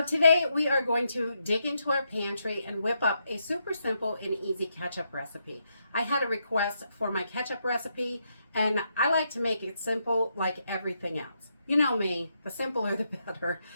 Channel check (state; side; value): inverted; both; correlation -0.80